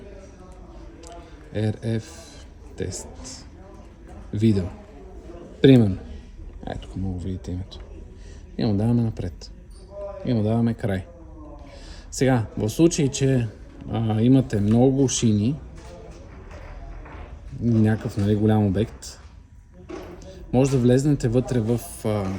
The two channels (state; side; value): identical; both; correlation 1.00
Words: тест. Видео. Примерно. Ето, тук мога да видите името. И му даваме напред. И му даваме край. Сега, в случай, че имате много шини, някакъв голям обект, може да влезнете вътре в